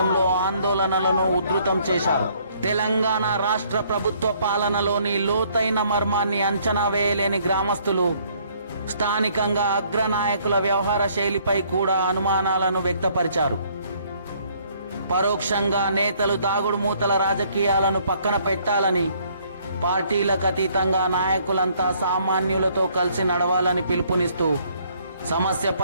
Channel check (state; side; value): inverted; both; correlation -0.64